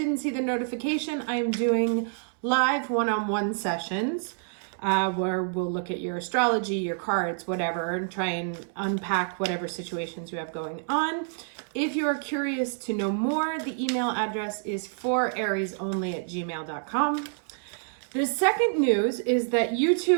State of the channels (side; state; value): left; silent; 60 dB below the other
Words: see the notification, I am doing live one-on-one sessions where we'll look at your astrology, your cards, whatever, and try and unpack whatever situations you have going on. If you are curious to know more, the email address is forariesonly@gmail.com. The second news is that